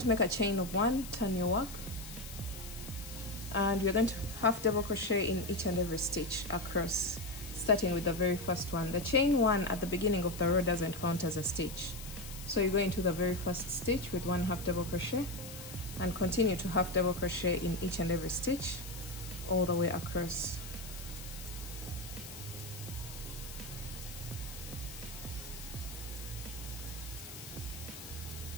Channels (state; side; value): noise; left; hiss, 12 dB below the sound